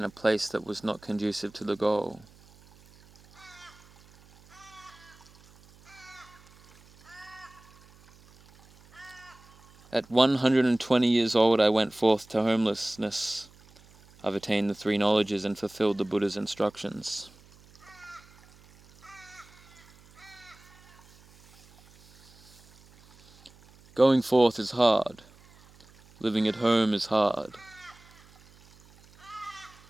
a place that was not conducive to the goal. At 120 years old I went forth to homelessness. I've attained the 3 knowledges and fulfilled the Buddha's instructions. Going forth is hard. Living at home is hard.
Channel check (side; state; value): right; noise; hum, 26 dB below the sound